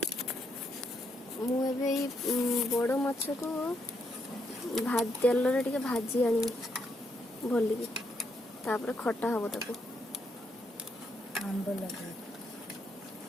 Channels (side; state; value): both; normal; correlation 0.77